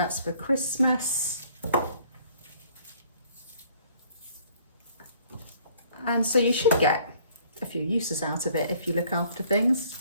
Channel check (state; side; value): inverted; both; correlation -0.59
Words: for Christmas. And so you should get a few uses out of it if you look after things.